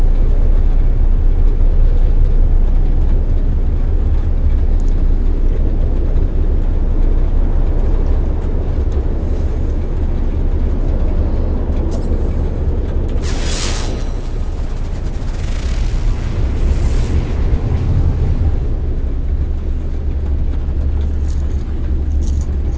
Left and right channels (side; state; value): both; identical; correlation 1.00